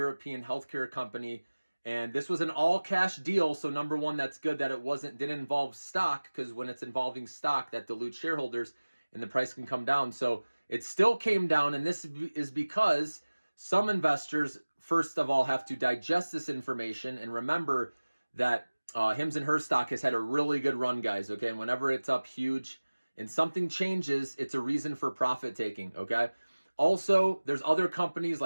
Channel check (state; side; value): inverted; both; correlation -1.00